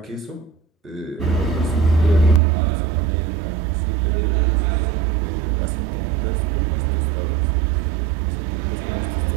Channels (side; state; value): left; drops out; at 2.4 s